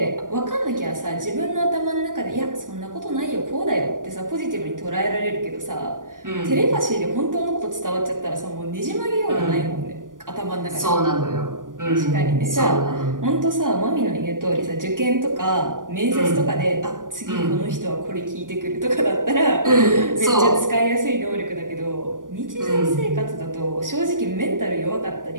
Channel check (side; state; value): left; late; 0.89 ms